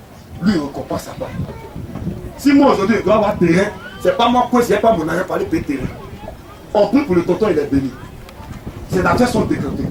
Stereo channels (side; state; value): both; identical; correlation 1.00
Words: lui récompense sa part. Si moi aujourd'hui je dois avoir terrain, c'est pas moi que c'est pas mon argent pour aller payer terrain. On prie pour le tonton, il est béni. Ses affaires sont décantées.